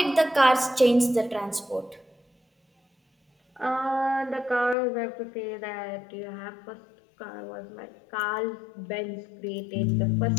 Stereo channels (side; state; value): right; drops out; at 4.8 s